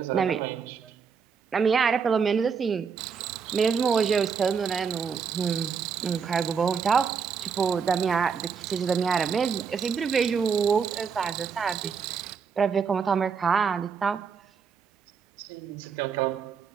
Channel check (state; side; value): quieter; left; 6.2 dB